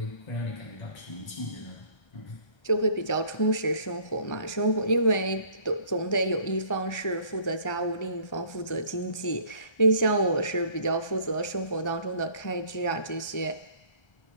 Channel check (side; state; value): right; late; 1.3 ms